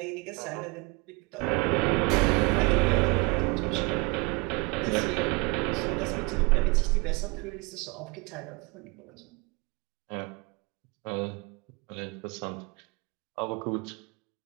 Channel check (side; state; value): left; quieter; 28.1 dB